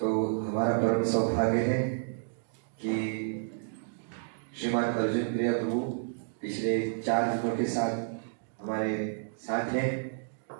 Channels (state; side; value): silent; left; digital silence